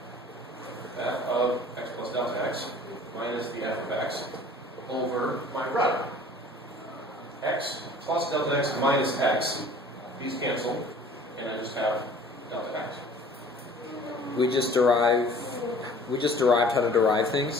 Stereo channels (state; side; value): normal; both; correlation 0.49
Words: f of x plus delta x minus the f of x over my run. X plus delta x minus x, these cancel, and I just have delta x. We just derived how to derive